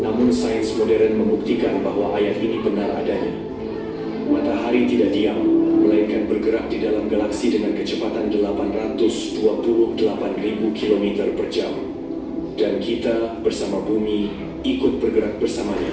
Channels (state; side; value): identical; both; correlation 1.00